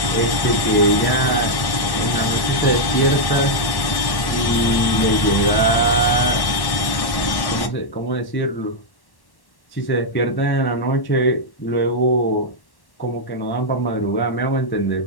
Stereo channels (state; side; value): late; right; 1.1 ms